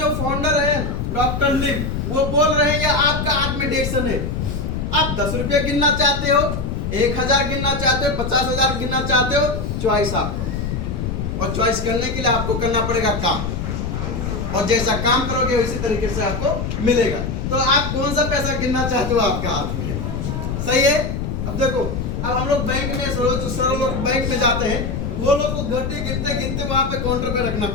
फाउंडर है डॉक्टर लिम, वो बोल रहे हैं आपका हाथ में डीएक्सन है। आप 10 रुपये गिनना चाहते हो, 1000 गिनना चाहते हो, 50,000 गिनना चाहते हो, चॉइस आपको। और चॉइस करने के लिए आपको करना पड़ेगा काम, और जैसा काम करोगे उसी तरीके से आपको मिलेगा। तो आप कौन सा पैसा गिनना चाहते हो? आपका हाथ में। सही है? अब देखो, अब हम लोग बैंक में लोग बैंक में जाते हैं, वो लोग को घंटे गिनते वहां पे काउंटर पे रखना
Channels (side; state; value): left; noise; rumble, 3 dB below the sound